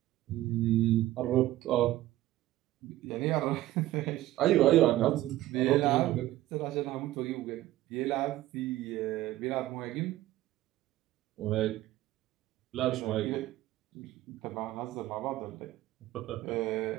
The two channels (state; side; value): quieter; left; 15.4 dB